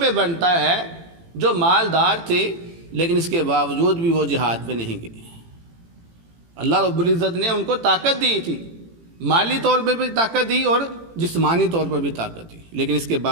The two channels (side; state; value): left; late; 18 ms